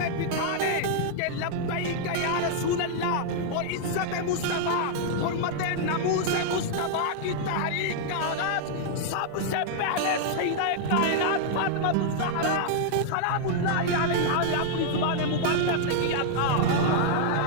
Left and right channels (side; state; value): both; different; correlation -0.01